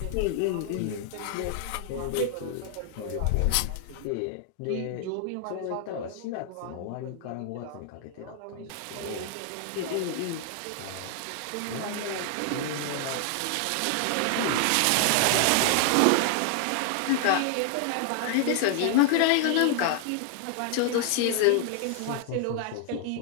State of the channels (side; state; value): both; different; correlation 0.00